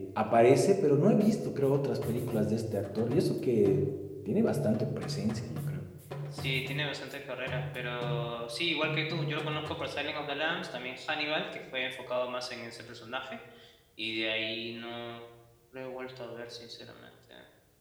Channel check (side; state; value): both; identical; correlation 1.00